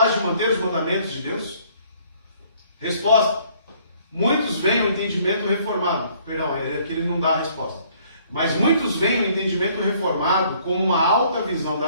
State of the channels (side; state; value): both; inverted; correlation -0.61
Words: de manter os mandamentos de Deus? Resposta: muitos veem o entendimento reformado. Perdão, aqui ele não dá a resposta. Mas muitos veem o entendimento reformado como uma alta visão da